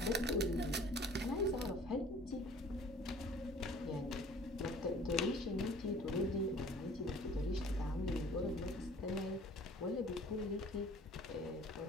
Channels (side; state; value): both; normal; correlation 0.50